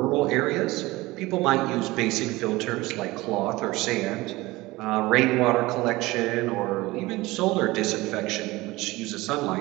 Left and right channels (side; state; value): left; quieter; 20.1 dB